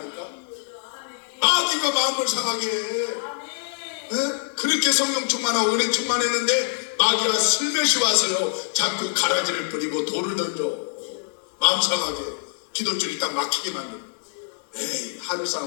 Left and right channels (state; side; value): silent; right; 62 dB below the other